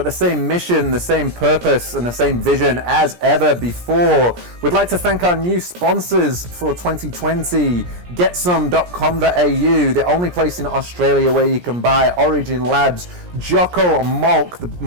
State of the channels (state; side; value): late; left; 17 ms